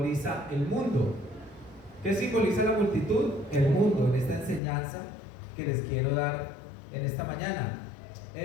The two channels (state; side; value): drops out; right; at 4.6 s